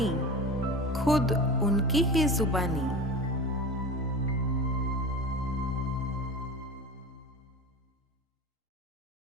खुद उनकी ही जुबानी।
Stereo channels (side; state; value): both; normal; correlation 0.31